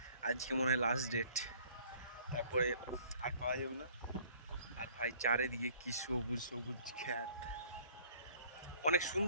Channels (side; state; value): both; inverted; correlation -0.57